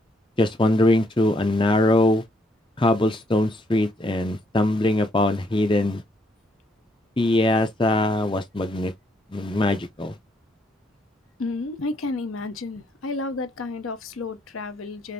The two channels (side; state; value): both; normal; correlation 0.71